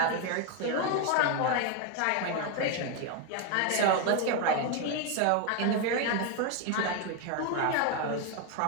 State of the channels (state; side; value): different; both; correlation 0.01